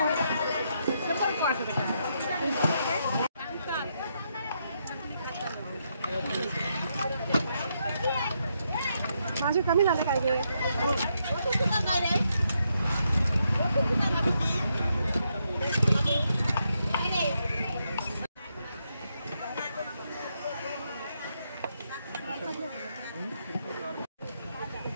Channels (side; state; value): both; inverted; correlation -0.79